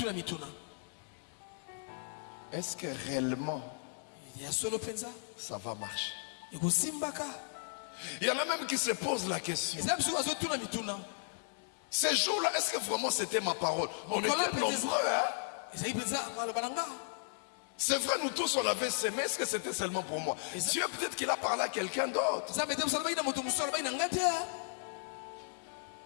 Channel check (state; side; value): silent; right; digital silence